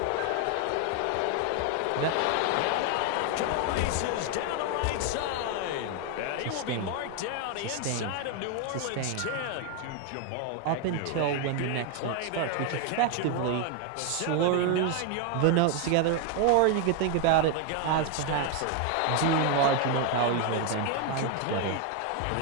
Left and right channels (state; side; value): different; both; correlation 0.01